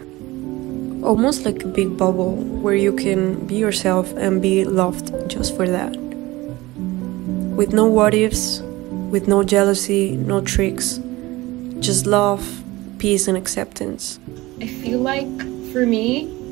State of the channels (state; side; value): quieter; left; 19.8 dB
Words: Almost like a big bubble where you can be yourself and be loved just for that. With no what ifs, with no jealousy, no tricks, just love, peace and acceptance. I feel like for me,